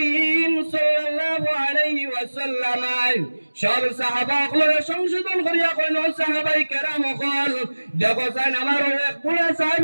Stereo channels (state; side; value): inverted; both; correlation -1.00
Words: সাল্লাল্লাহু আলাইহি ওয়াসাল্লাম সব সাহাবাগুলোর সংশোধন করিয়া কইল, সাহাবাই কেরাম হল দেখো চাই আমার এক বুড়া